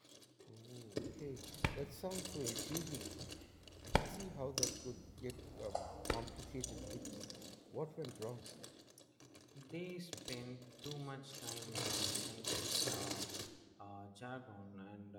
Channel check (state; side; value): identical; both; correlation 1.00